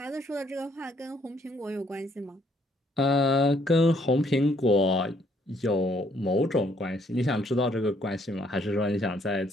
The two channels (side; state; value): both; normal; correlation 0.67